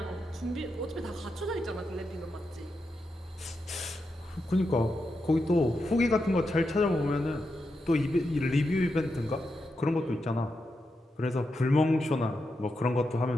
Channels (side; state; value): both; normal; correlation 0.86